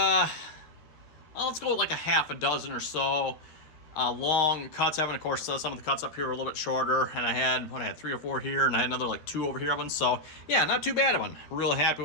go with like a half a dozen or so long cuts. Of course, some of the cuts up here are a little bit shorter. And I had 3 or 4 here, and I had another like 2 over here of them. So yeah, not too bad of one. Really happy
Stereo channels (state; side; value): late; right; 13 ms